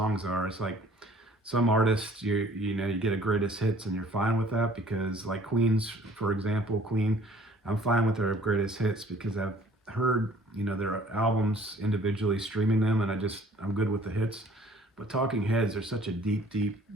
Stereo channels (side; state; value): both; normal; correlation 0.54